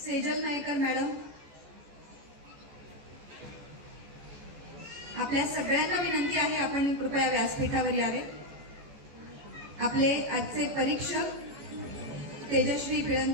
सेजल नायकर मॅडम। आपल्या सगळ्यांना विनंती आहे आपण कृपया व्यासपीठावर यावे। आपले आजचे परीक्षक तेजश्री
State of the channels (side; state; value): left; late; 14 ms